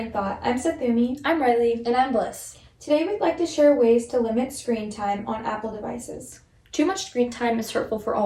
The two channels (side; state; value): both; identical; correlation 1.00